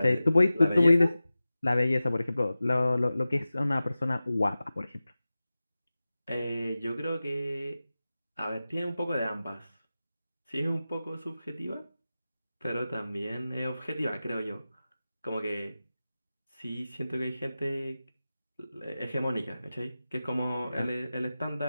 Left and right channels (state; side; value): inverted; both; correlation -0.95